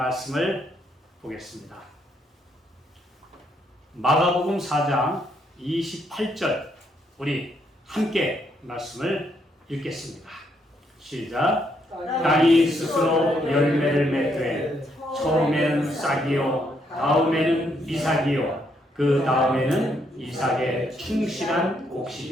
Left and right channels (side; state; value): both; normal; correlation 0.74